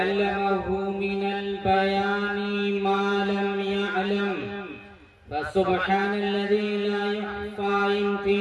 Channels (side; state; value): both; identical; correlation 1.00